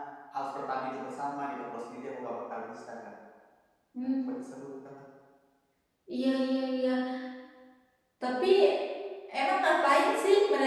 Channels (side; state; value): both; identical; correlation 1.00